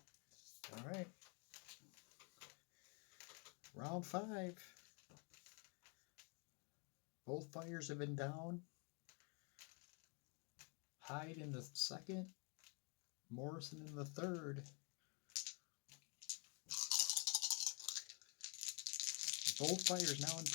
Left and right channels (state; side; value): quieter; right; 35.4 dB